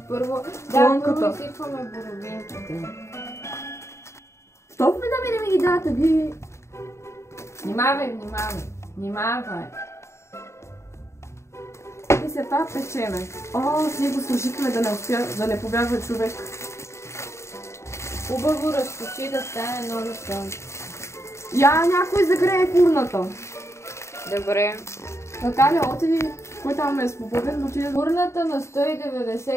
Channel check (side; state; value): right; late; 0.13 ms